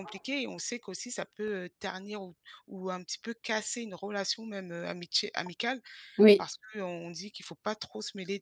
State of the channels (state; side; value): identical; both; correlation 1.00